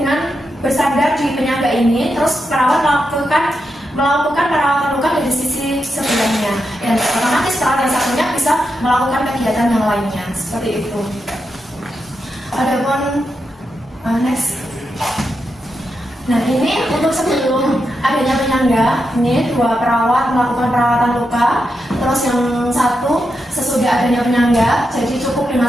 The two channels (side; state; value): both; normal; correlation 0.86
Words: bersandar di penyangga ini, terus perawat melakukan perawatan luka dari sisi sebelahnya, dan otomatis perawat yang satunya bisa melakukan kegiatan yang lainnya, seperti itu. Adapun next. Nah, ini untuk sebelum adanya penyangga, ini 2 perawat melakukan perawatan luka, terus yang satu sesudah adanya penyangga, jadi cukup dengan